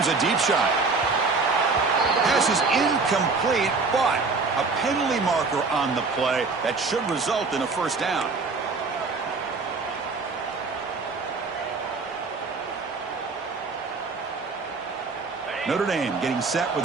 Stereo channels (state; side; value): quieter; left; 4.2 dB